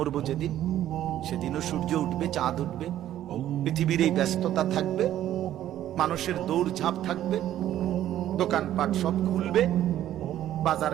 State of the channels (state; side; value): quieter; left; 12.3 dB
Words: যেদিন, সেদিনও সূর্য উঠবে, চাঁদ উঠবে, পৃথিবীর এই ব্যস্ততা থাকবে, মানুষের দৌড়ঝাঁপ থাকবে, দোকানপাট সব খুলবে, বাজার